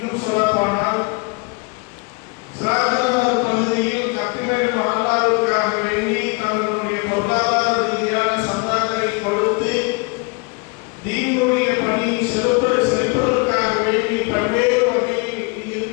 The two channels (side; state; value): right; quieter; 30.4 dB